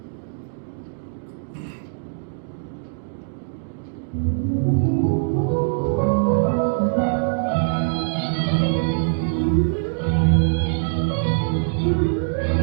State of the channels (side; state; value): left; silent; digital silence